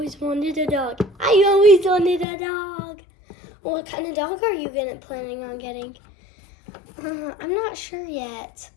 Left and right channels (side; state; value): right; drops out; at 2.2 s